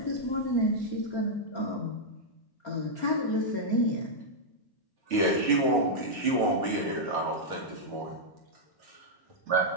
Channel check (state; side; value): late; right; 1.1 ms